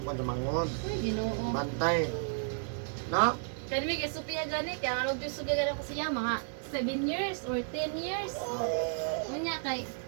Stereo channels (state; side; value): silent; left; digital silence